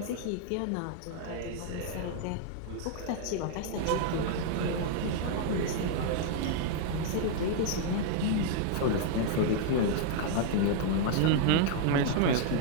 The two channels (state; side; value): different; both; correlation 0.00